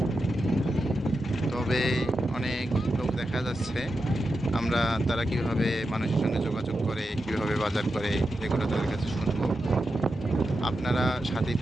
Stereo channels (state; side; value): normal; both; correlation 0.89